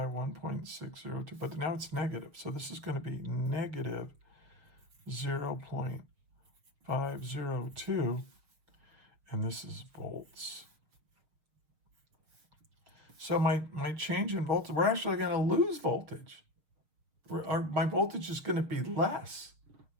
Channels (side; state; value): left; late; 6.5 ms